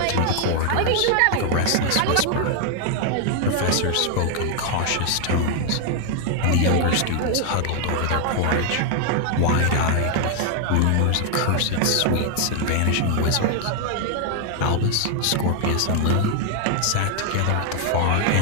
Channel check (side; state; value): both; different; correlation 0.00